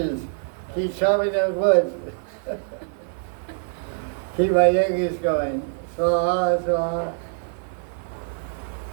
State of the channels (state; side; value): silent; left; 57 dB below the other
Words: Keep chopping those woods. Keep my yogis going. Swaha.